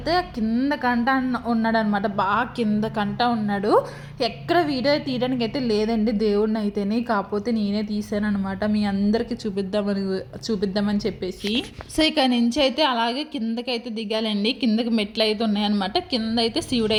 కింద కంట ఉన్నాడు అనమాట. బాగా కింద కంట ఉన్నాడు. ఎక్కడ వీడియో తీయడానికి అయితే లేదండి దేవుడిని అయితేనే, కాకపోతే నేనే తీసాను అనమాట మీ అందరికీ చూపిద్దామని చెప్పేసి. సో ఇక్కడ నుంచి అయితే అలాగే కిందకైతే దిగాలండి. కిందకి మెట్లు అయితే ఉన్నాయన్నమాట. కింద అయితే శివుడు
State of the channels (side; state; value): both; identical; correlation 1.00